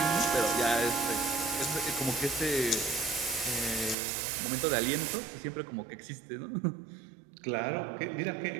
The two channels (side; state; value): left; drops out; at 4.0 s